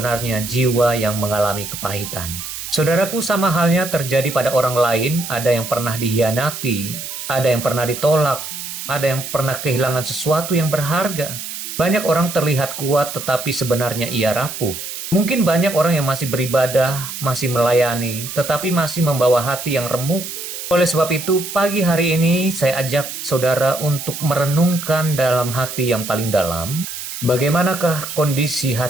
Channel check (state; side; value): noise; right; hiss, 8 dB below the sound